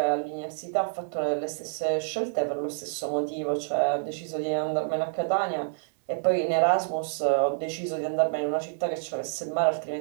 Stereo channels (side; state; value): left; silent; 59 dB below the other